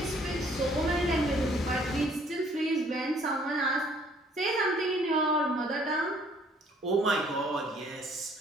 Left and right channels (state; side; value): normal; both; correlation 0.60